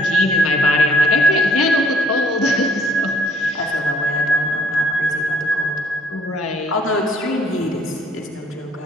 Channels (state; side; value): normal; both; correlation 0.63